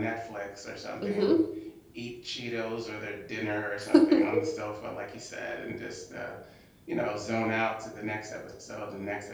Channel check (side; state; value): both; identical; correlation 1.00